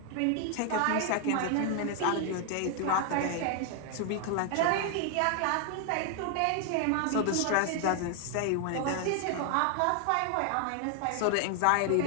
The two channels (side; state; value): both; different; correlation 0.00